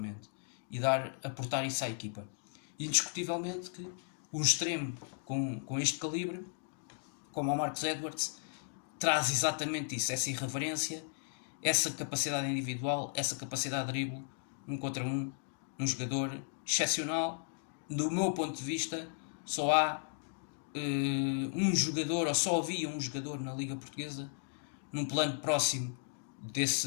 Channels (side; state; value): right; silent; digital silence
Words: e aportar isso à equipa. E indiscutivelmente que um extremo com este calibre, como o Marcus Edwards, traz exatamente isso, essa irreverência, essa capacidade individual, essa capacidade de drible, 1 contra 1, um jogador excepcional. Do meu ponto de vista, só há um jogador, ou só havia um jogador na Liga Portuguesa num plano próximo